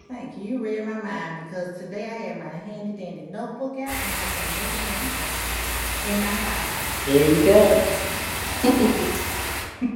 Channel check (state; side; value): identical; both; correlation 1.00